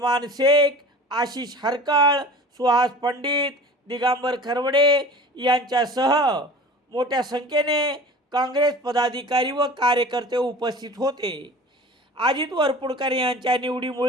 शेख, आशिष हरकळ, सुहास पंडित, दिगंबर खरवडे यांच्यासह मोठ्या संख्येने काँग्रेस पदाधिकारी व कार्यकर्ते उपस्थित होते। अजित वरपुडकर यांच्या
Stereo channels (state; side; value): normal; both; correlation 0.40